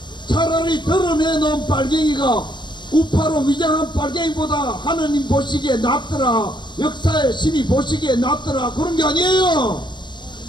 차라리 드러내놓은 빨갱이가 우파로 위장한 빨갱이보다 하느님 보시기에 낫더라, 역사의 신이 보시기에 낫더라, 그런 게 아니에요.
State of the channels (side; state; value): right; late; 0.22 ms